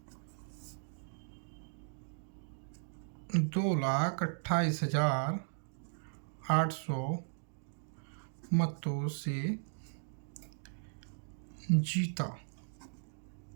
2,28,800 मतों से जीता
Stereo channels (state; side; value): silent; left; digital silence